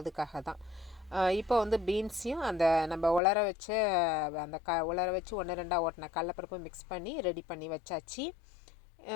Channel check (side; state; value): right; drops out; at 3.2 s